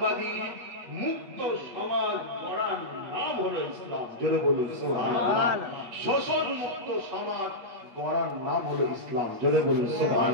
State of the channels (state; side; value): late; left; 8.3 ms